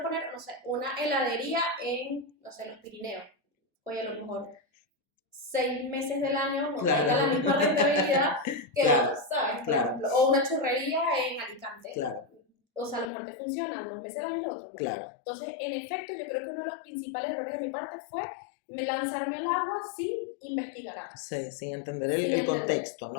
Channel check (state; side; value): drops out; right; at 13.1 s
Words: no sé, una heladería en, no sé, los Pirineos. Oye, a lo mejor 6 meses del año no tenga la misma rentabilidad que otros, ¿sabes? Por ejemplo, o una churrería en Alicante. O sea, a lo mejor te funciona unos meses al año y los otros no. Entonces, en efecto, yo creo que uno de los principales errores de mi parte fue lanzarme al agua sin investigar antes. Sí, sin entender el contexto,